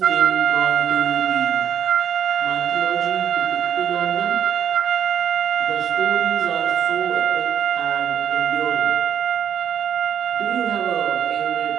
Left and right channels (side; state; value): left; quieter; 9.0 dB